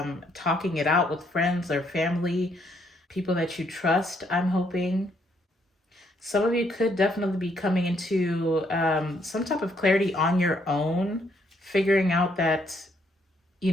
talking it out with friends or family, people that you trust, I'm hoping. Some of you could definitely be coming into some type of clarity on your own, figuring out that, you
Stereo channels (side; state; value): both; normal; correlation 0.71